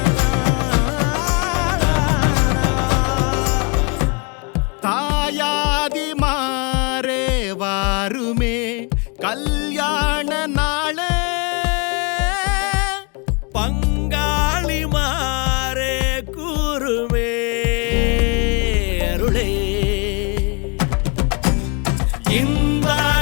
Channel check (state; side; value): quieter; right; 32.4 dB